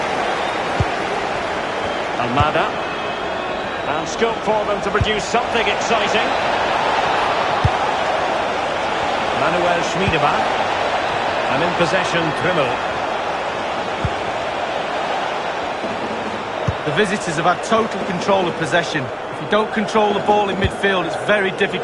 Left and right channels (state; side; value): identical; both; correlation 1.00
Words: Almada. And scope for them to produce something exciting. Manuel Schmiedebach. And in possession, Trimmel. The visitors have had total control of possession. If you don't control the ball in midfield, it's very